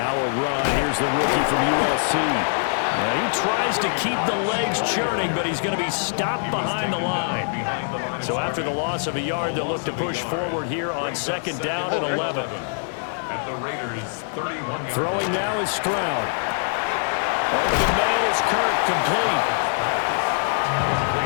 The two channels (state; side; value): silent; right; digital silence